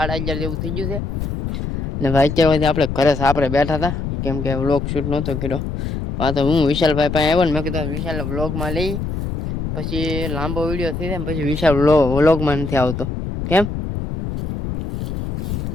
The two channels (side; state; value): left; noise; rumble, 4 dB below the sound